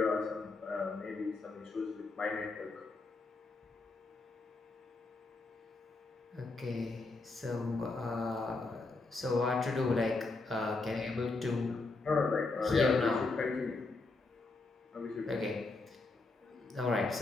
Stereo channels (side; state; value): right; quieter; 3.5 dB